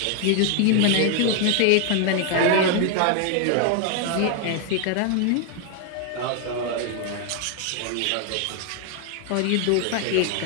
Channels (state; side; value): different; both; correlation 0.00